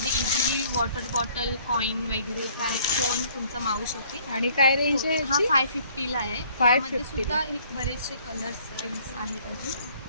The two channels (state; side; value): inverted; both; correlation -0.59